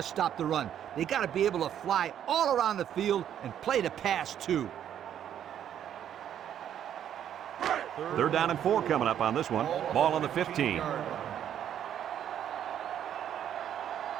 stop the run. They got to be able to fly all around the field and play the pass, too. 3rd down and 4 coming up on this one. Ball on the 15.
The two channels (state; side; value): quieter; left; 10.0 dB